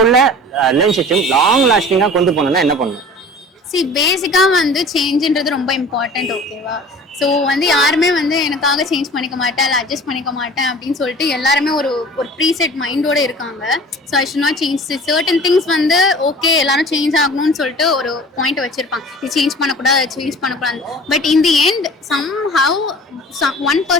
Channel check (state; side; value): normal; both; correlation 0.42